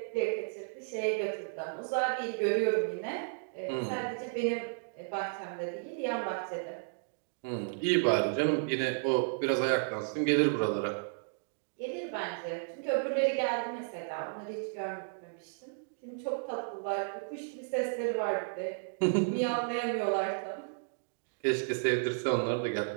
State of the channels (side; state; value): left; silent; digital silence